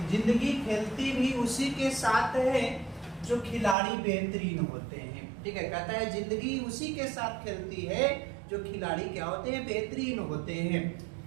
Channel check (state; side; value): drops out; left; at 3.8 s